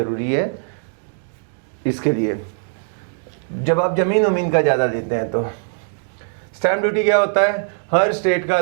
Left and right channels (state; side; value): silent; left; digital silence